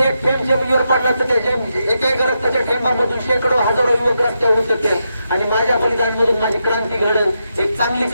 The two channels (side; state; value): both; inverted; correlation -0.85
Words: थेंब जमिनीवर पडला तर त्याच्या एका रक्ताच्या थेंबामधून शेकडो हजारो युवक रस्त्यावर उतरते आणि माझ्या बलिदानमधून माझी क्रांती घडल, एक चांगली